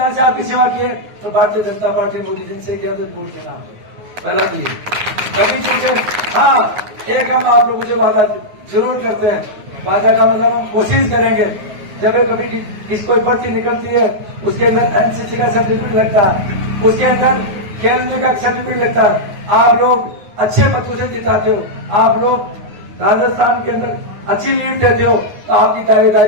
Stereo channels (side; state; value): left; late; 9.5 ms